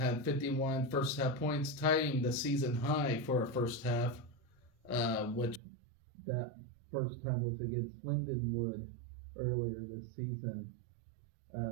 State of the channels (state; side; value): drops out; left; at 5.6 s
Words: 51 first half points, tying the season high for a first half, which that first time was against Lindenwood earlier this season.